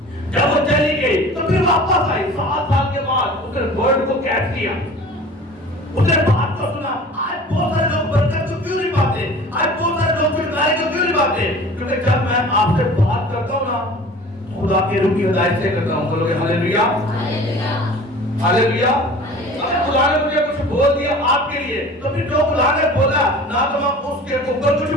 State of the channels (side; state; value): both; normal; correlation 0.42